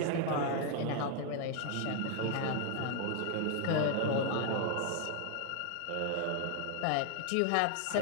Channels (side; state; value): both; different; correlation 0.00